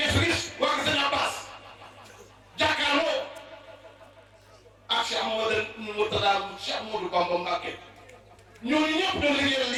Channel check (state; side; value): identical; both; correlation 1.00